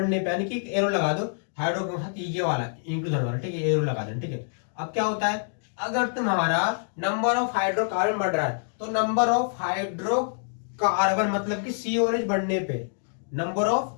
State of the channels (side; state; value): right; silent; digital silence